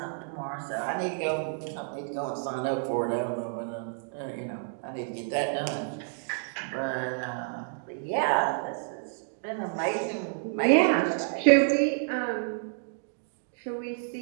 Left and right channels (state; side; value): silent; left; digital silence